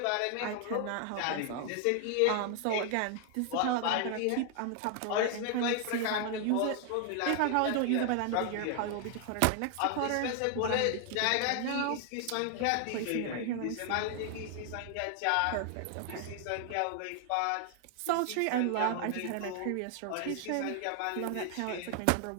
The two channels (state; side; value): different; both; correlation 0.00